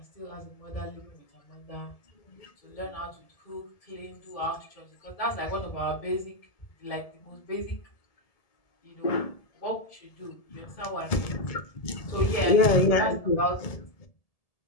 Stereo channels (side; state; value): right; late; 1.7 ms